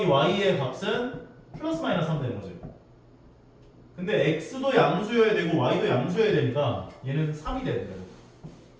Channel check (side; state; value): both; identical; correlation 1.00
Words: y의 값은 플러스 마이너스 3 되는 거지. 근데 x도 양수여야 되고 y도 양수여야 되니까 얘는 3이 돼야 돼요.